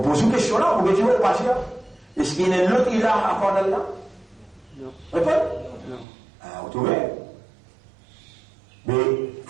une question là, vous pouvez pas dire. Est-ce qu'il y a un autre ilah à part d'Allah? Non. Répondez. Non. Ah, vous trouvez? Mais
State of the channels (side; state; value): left; drops out; at 6.1 s